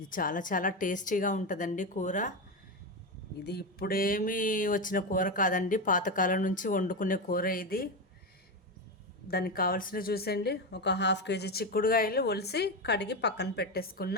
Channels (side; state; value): both; normal; correlation 0.14